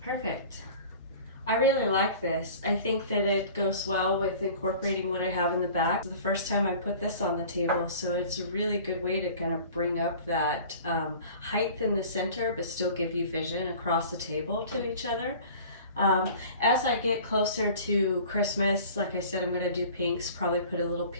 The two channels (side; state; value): both; inverted; correlation -0.44